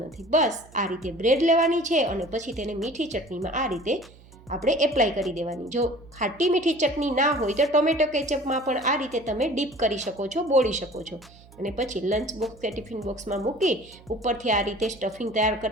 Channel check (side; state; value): right; noise; hum, 24 dB below the sound